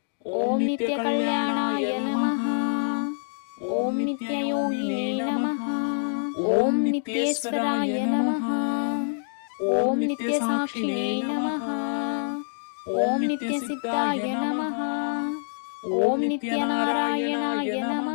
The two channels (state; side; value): silent; right; digital silence